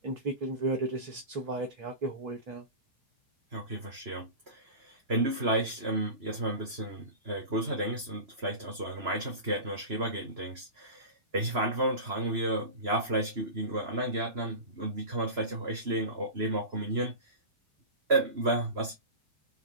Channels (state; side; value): late; left; 3.0 ms